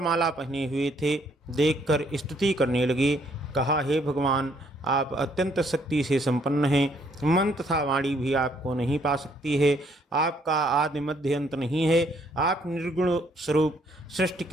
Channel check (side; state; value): both; normal; correlation 0.67